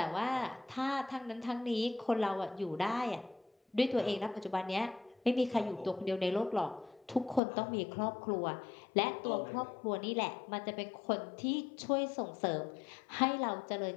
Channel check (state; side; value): drops out; right; at 7.4 s